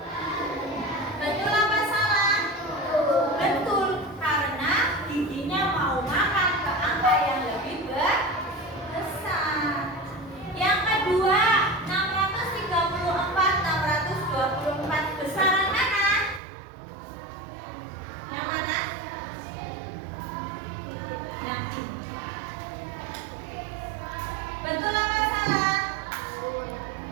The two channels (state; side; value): drops out; left; at 16.4 s